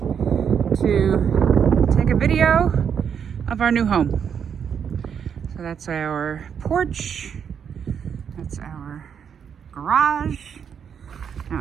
to take a video of our new home. So that's our porch. That's our garage. Now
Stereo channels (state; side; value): quieter; left; 7.5 dB